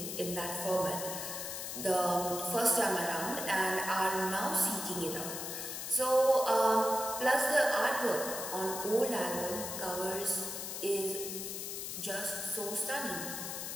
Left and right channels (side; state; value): left; noise; hiss, 5 dB below the sound